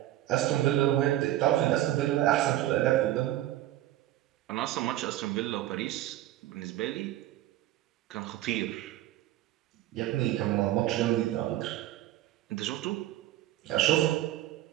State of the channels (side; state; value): left; quieter; 14.5 dB